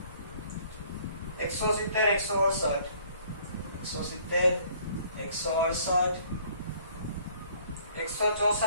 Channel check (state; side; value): inverted; both; correlation -0.58